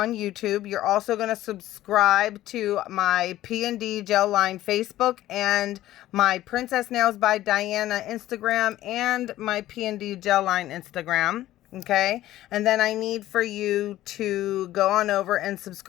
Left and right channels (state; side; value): quieter; right; 14.5 dB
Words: YouTube. You're also going to subscribe to my P&D Gel Line Facebook and my Princess Nails by Diana Instagram and my P&D Gel Line Instagram. Okay, and then I need for you to go on over and